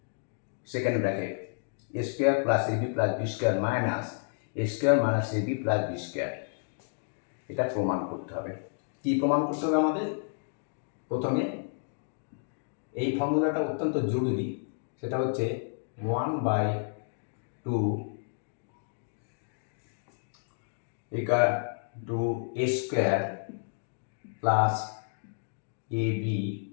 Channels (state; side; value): silent; right; digital silence